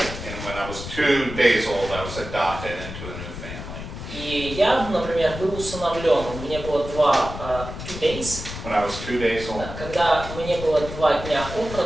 when I was 2 days old, I was adopted into a new family. И я, например, был усыновлен. Мне было 2 days. When I was 2 days old. Да, когда мне было 2 дня от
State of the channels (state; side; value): noise; left; rumble, 9 dB below the sound